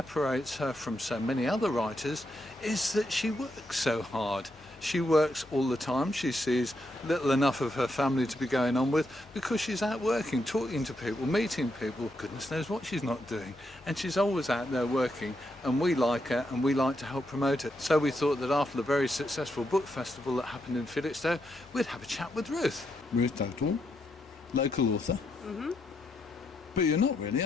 her from so many other writers is that she works so hard. She works all the time. She sees little enough of her family to be going on with because she's out working, talking to people, meeting people. Goodness knows what she's not doing. And she's always out there working, and we like her and we like to help promote it. So we thought that after the very successful book festival that happened in Felixstowe, we'd have a chat with Ruth. Ruth Dugdall, local author. Mm-hmm. But you're not really,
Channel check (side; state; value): both; normal; correlation 0.81